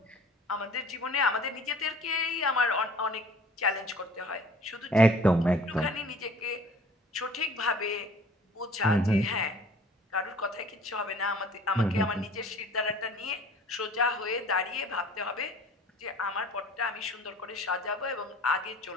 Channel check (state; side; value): normal; both; correlation 0.49